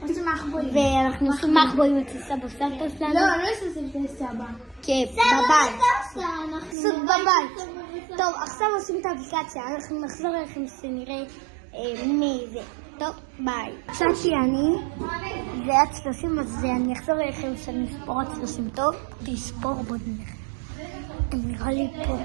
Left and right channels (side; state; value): left; drops out; at 6.8 s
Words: ואנחנו עושים מחבואים אצל סבא וסבתא שלנו. לא עושים את סבא. כן, בבית. סוג בבית. טוב, עכשיו עושים את האפליקציה, אנחנו נחזור אליכם שנראה מי זה. טוב, ביי. קצתי אני, זה עד 30, אז אני אחזור אליכם שאני אספור עד 30. טוב, תספור בוא נלך. נראה לי פה.